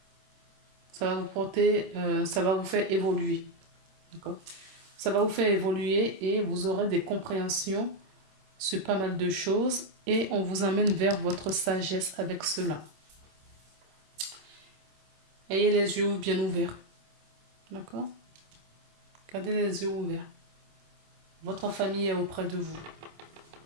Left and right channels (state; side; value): late; left; 26 ms